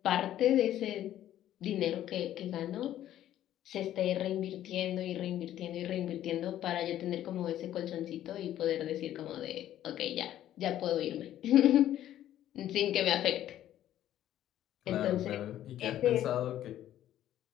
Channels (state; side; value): quieter; right; 12.3 dB